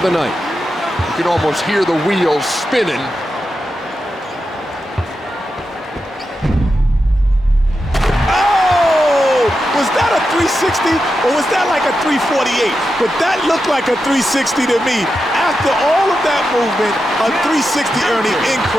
the night. You can almost hear the wheels spinning. Was that a 360 or was that like a 348? But that looked like a 360 to me. After all of that movement, a 360, Ernie,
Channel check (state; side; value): normal; both; correlation 0.89